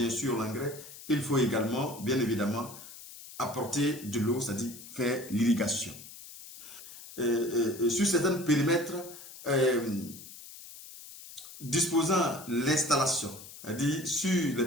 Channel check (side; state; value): left; noise; hiss, 16 dB below the sound